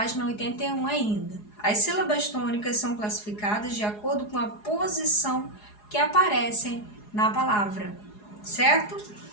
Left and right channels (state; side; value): late; right; 4.8 ms